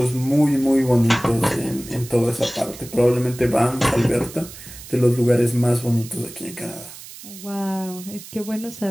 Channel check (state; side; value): noise; right; hiss, 16 dB below the sound